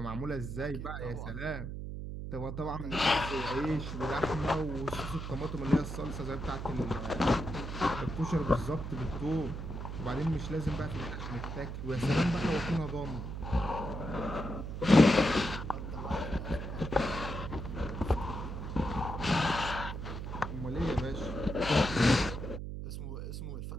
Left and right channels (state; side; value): noise; right; hum, 6 dB below the sound